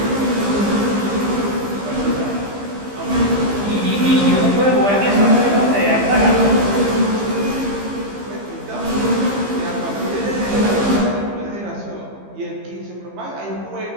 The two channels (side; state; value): left; late; 15 ms